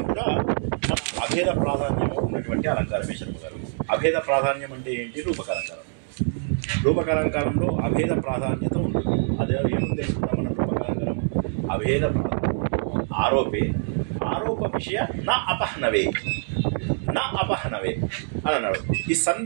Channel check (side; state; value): left; silent; 62 dB below the other